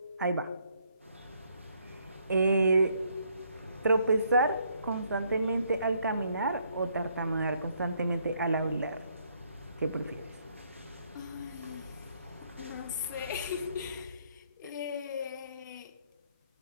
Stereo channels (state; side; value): inverted; both; correlation -0.69